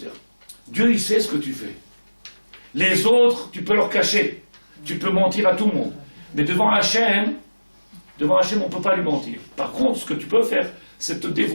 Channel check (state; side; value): inverted; both; correlation -1.00